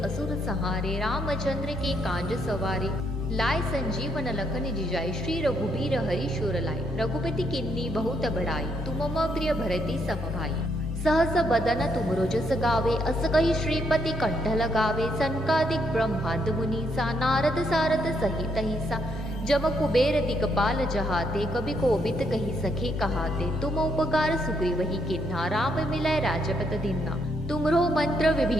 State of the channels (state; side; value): normal; both; correlation 0.74